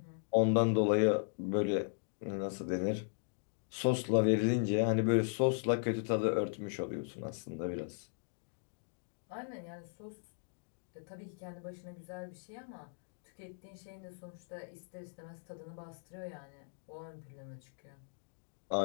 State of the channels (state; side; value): silent; right; digital silence